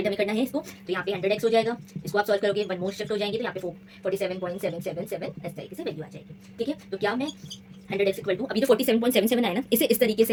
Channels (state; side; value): identical; both; correlation 1.00